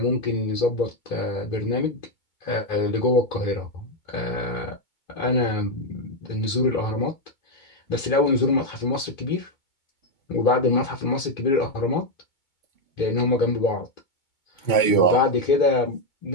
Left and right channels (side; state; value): right; late; 2.2 ms